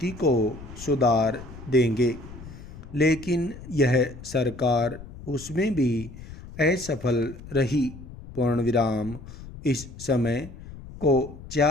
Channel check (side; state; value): left; noise; rumble, 15 dB below the sound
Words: को सुधार देंगे, लेकिन यह सरकार उसमें भी असफल रही। पूर्ण विराम। इस समय को